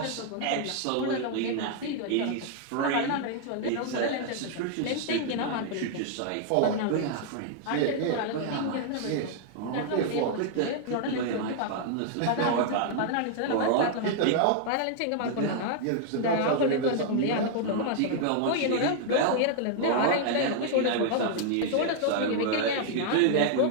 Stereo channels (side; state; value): both; different; correlation -0.01